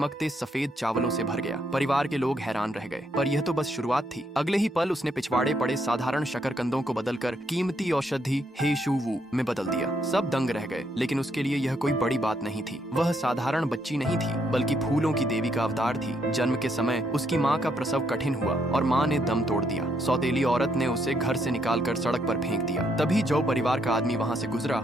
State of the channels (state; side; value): normal; both; correlation 0.74